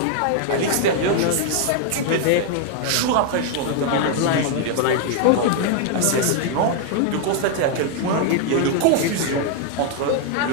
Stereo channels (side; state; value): both; different; correlation 0.00